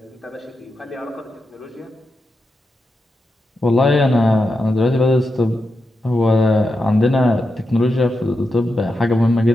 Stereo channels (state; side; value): normal; both; correlation 0.88